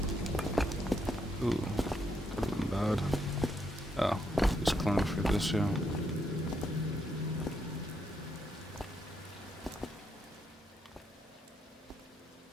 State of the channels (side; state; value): both; normal; correlation 0.77